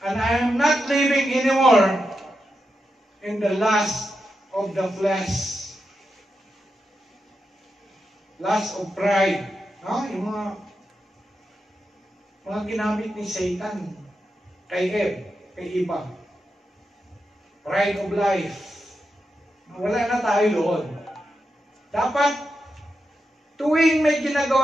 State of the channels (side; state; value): both; normal; correlation 0.87